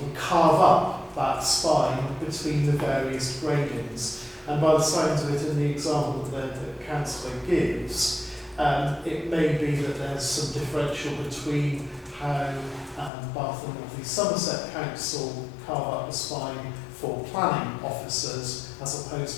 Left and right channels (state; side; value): drops out; right; at 13.1 s